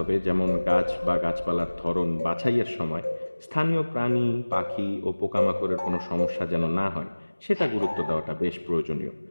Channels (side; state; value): both; inverted; correlation -1.00